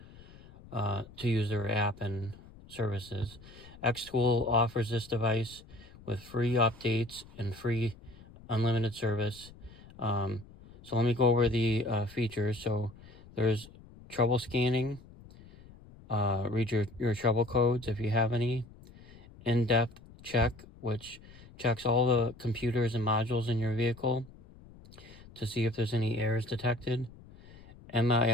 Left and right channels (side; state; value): left; noise; rumble, 21 dB below the sound